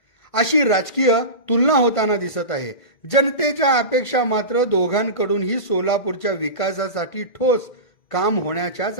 अशी राजकीय तुलना होताना दिसत आहे. जनतेच्या अपेक्षा मात्र दोघांकडूनही सोलापूरच्या विकासासाठी ठोस काम होण्याच्याच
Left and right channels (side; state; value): right; late; 1.5 ms